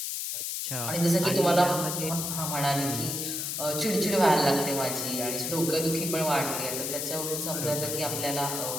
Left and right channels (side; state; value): left; noise; hiss, 3 dB below the sound